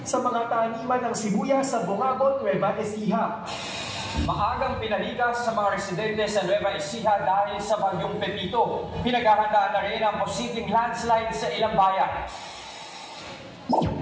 sa mga taniman ng sibuyas sa Bungabon, Nueva Ecija. Maagang pinalikas sa mga residente sa Nueva Ecija dahil sa bagyong Pepito. Pinaghahandaan na rin ang posibleng landslide sa ilang bayan.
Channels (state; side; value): identical; both; correlation 1.00